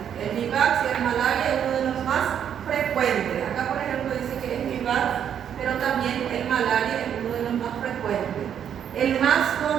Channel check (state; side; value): quieter; left; 8.9 dB